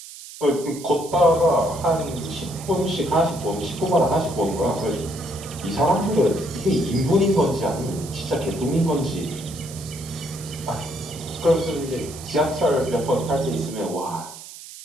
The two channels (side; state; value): right; noise; hiss, 15 dB below the sound